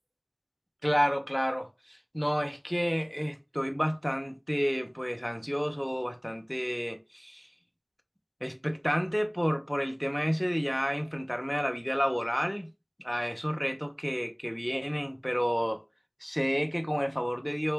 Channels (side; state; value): both; identical; correlation 1.00